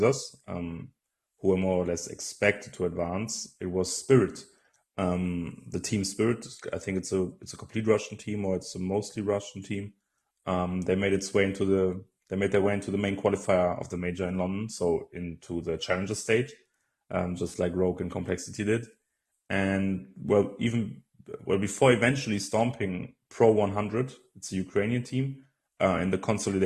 who were more or less expected to advance, it was Spirit. The team Spirit, I think it's a complete Russian team, or it's a mostly Russian team. They made their way into the main qualifier of the major in London, so into the challenger stage, just like Rogue and Complexity did. And well, before eventually stomping Pro 100, it's a Ukrainian team, in the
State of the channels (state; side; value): identical; both; correlation 1.00